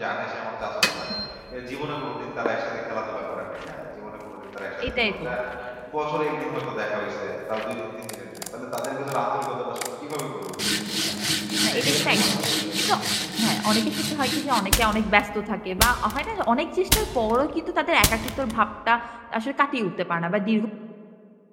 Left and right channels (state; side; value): identical; both; correlation 1.00